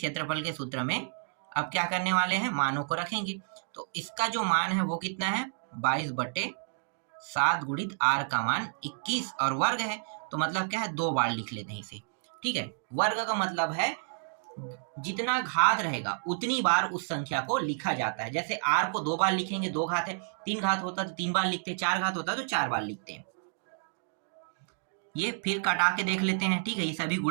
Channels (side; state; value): left; silent; digital silence